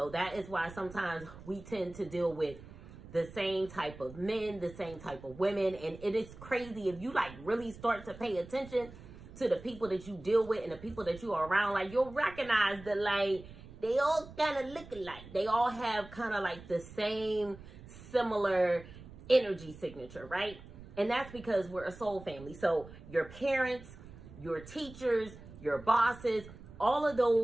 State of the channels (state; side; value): noise; right; rumble, 17 dB below the sound